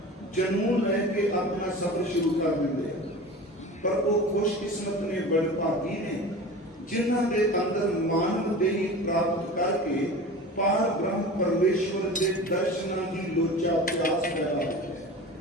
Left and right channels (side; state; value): both; normal; correlation 0.34